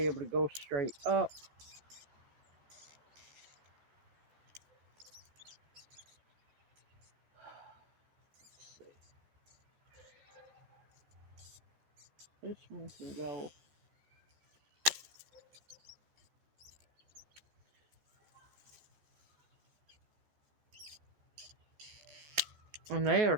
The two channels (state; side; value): late; left; 14 ms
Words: able to go straight up. Let's see. This one can go. And they are